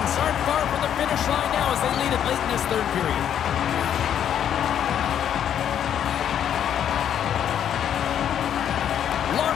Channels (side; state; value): right; quieter; 9.5 dB